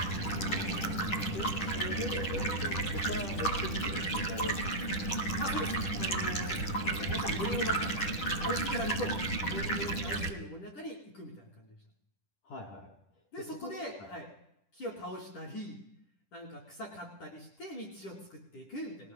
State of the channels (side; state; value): right; late; 10 ms